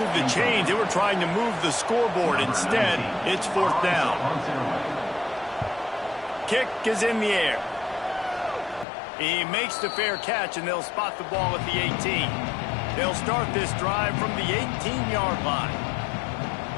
the chains. They were trying to move the scoreboard. Instead, it's 4th down. Kick is in the air. He makes the fair catch, and they'll spot the ball at the 18. They'll start this drive from the 18-yard line.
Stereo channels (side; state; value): right; drops out; at 8.8 s